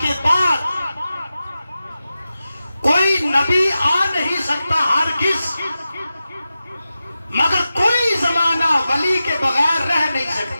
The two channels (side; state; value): both; inverted; correlation -0.93